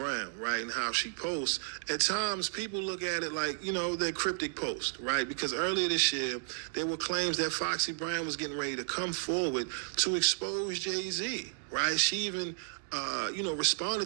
right, and how she posts, at times people look at it like, they're cryptic posts, right? Because earlier this year, there were claims that Foxy Brown was getting ready to come forward to expose Jay-Z, right? She even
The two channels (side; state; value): left; silent; digital silence